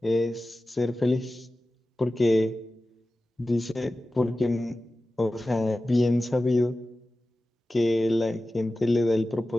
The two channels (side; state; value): both; normal; correlation 0.95